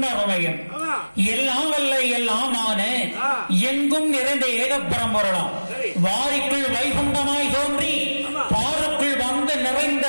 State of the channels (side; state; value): both; inverted; correlation -1.00